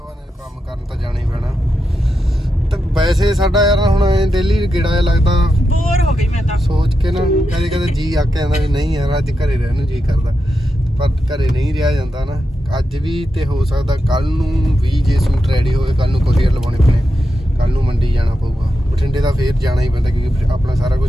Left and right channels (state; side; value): normal; both; correlation 0.87